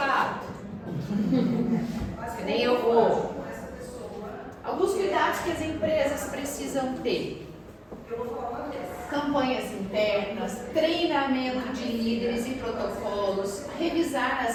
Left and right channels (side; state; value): both; identical; correlation 1.00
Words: Que nem eu vou. Alguns cuidados que as empresas precisam ter. Campanhas internas, treinamento de líderes e protocolos, revisar